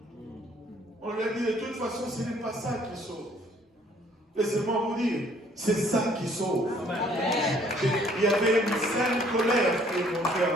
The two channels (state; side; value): normal; both; correlation 0.61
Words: On lui a dit, de toute façon, ce n'est pas ça qui sauve. Laissez-moi vous dire, c'est ça qui sauve. Il y avait une sainte colère qui est montée